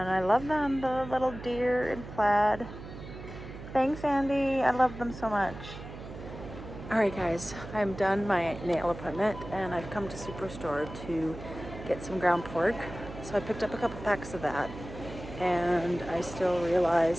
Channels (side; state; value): right; noise; hum, 12 dB below the sound